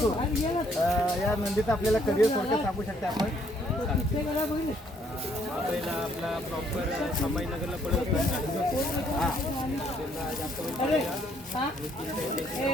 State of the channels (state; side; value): normal; both; correlation 0.67